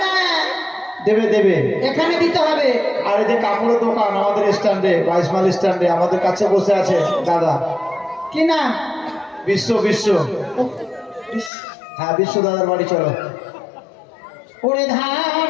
দেবে দেবে। এখানে দিতে হবে। আর এই যে কাপড়ের দোকান আমাদের স্ট্যান্ডে, 22 মাইল স্ট্যান্ডে আমাদের কাছে বসে আছে দাদা, কি নাম? বিশ্ব বিশ্ব। হ্যাঁ, বিশ্ব দাদার বাড়ি চলো। ওরে ধান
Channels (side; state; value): right; drops out; at 11.5 s